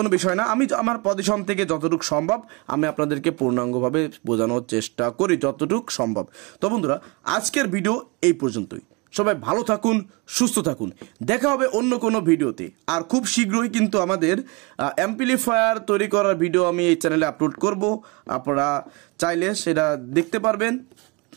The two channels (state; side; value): quieter; left; 27.5 dB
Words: বিষয় না। আমি আমার পজিশন থেকে যতটুকু সম্ভব আমি আপনাদেরকে পূর্ণাঙ্গভাবে বোঝানোর চেষ্টা করি যতটুকু সম্ভব। তো বন্ধুরা আজকের ভিডিও এই পর্যন্তই। সবাই ভালো থাকুন, সুস্থ থাকুন, দেখা হবে অন্য কোনো ভিডিওতে। আর খুব শীঘ্রই কিন্তু আমাদের অ্যাম্পলিফায়ার তৈরি করার ভিডিও আমি এই চ্যানেলে আপলোড করব, আপনারা চাইলে সেটা দেখতে পারবেন।